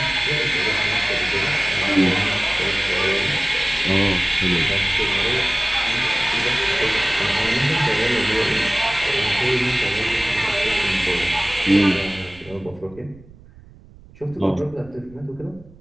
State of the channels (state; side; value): noise; right; rumble, 23 dB below the sound